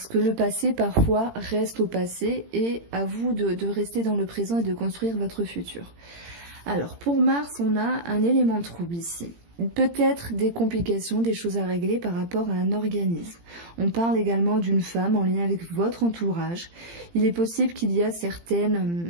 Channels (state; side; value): late; left; 18 ms